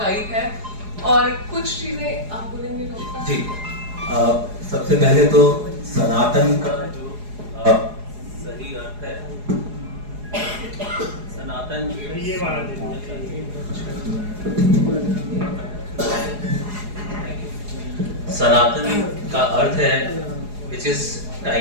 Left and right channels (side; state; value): left; late; 4.8 ms